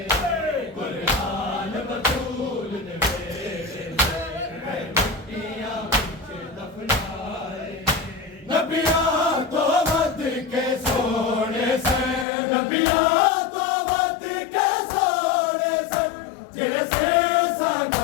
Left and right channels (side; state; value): right; drops out; at 12.2 s